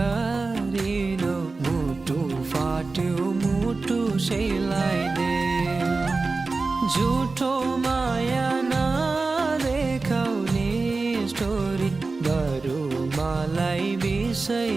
मुटु फाट्यो मुटु सेलाइदेऊ। झुठो माया नदेखाउने स्टोरी बरु मलाई विषय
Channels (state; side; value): quieter; left; 3.8 dB